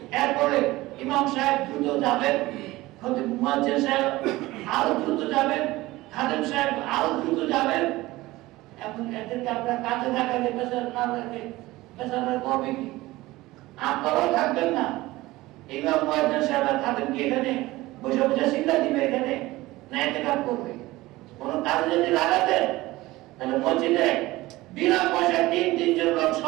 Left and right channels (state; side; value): quieter; left; 18.8 dB